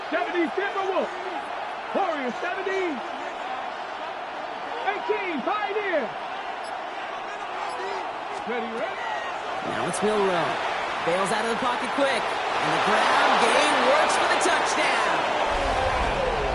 70, Timberwolf. Warriors, 70. 18, Pioneer. Ready, ready. Now it's Milrow. Bails out of the pocket quick. And the ground game works for the touchdown.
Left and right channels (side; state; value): both; identical; correlation 1.00